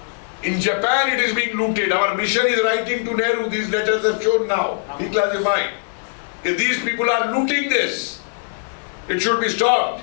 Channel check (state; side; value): silent; right; 56 dB below the other